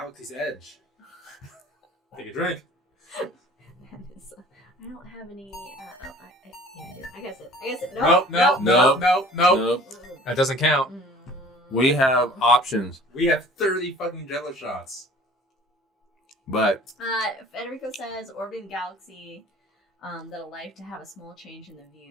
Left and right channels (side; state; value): both; normal; correlation 0.49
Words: Edge. Take a drink. I don't have any. Yeah, I do. I guess it. Nope. That doesn't count. We have options. We have 30 fucking Jello shots. But Federico says orbiting the galaxy that'll like to have a small change in the